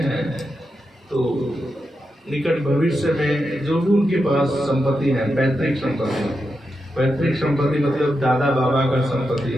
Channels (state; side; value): normal; both; correlation 0.87